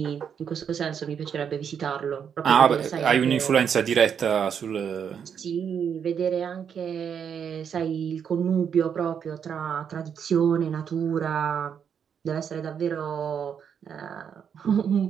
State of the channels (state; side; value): quieter; left; 7.7 dB